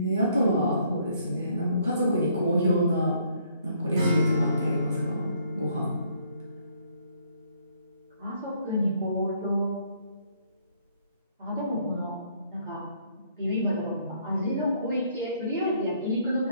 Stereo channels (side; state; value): both; inverted; correlation -0.66